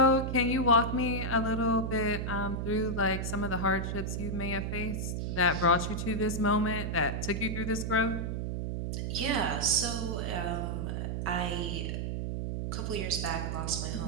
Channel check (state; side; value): noise; right; hum, 2 dB below the sound